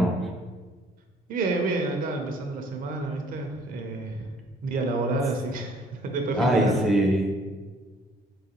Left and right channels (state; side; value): normal; both; correlation 0.59